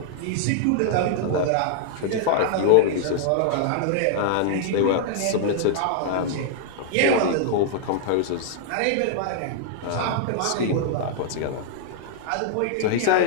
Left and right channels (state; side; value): different; both; correlation -0.01